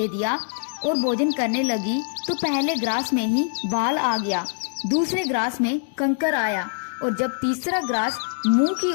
दिया और भोजन करने लगी तो पहले ग्रास में ही बाल आ गया, दूसरे ग्रास में कंकर आया और जब तीसरा ग्रास मुंह की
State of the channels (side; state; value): right; silent; digital silence